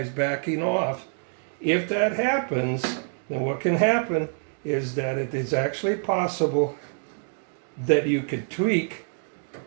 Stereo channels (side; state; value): left; silent; 61 dB below the other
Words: backing off. If that happens, then what can happen is that it is actually possible that you could tweak.